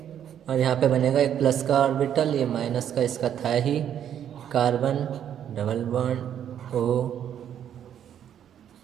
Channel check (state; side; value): quieter; left; 9.7 dB